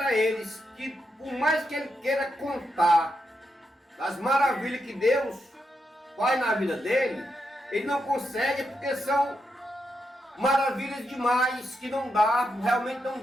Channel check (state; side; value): normal; both; correlation 0.84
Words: eles que por mais que ele queira contar das maravilhas que Deus faz na vida dele, ele não consegue, porque são maravilhas demais que não dá, realmente não